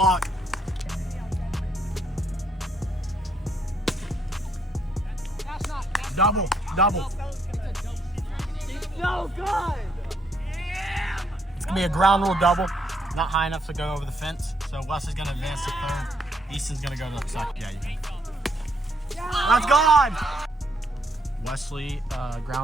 Double. So good! It's gonna be a ground rule double. Not high enough to go over the fence. So Wes is gonna advance to third. Easton's gonna go to the second. Yeah, you can. That's gone! Wesley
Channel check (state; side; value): normal; both; correlation 0.73